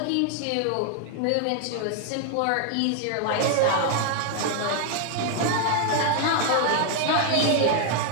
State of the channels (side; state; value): both; different; correlation 0.00